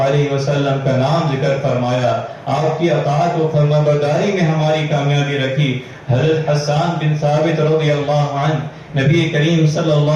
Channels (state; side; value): identical; both; correlation 1.00